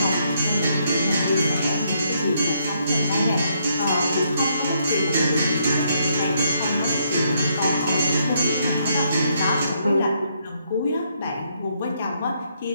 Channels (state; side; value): inverted; both; correlation -0.73